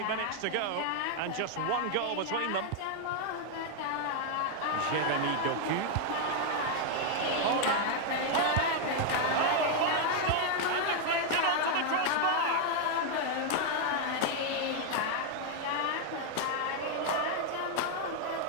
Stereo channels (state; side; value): different; both; correlation 0.00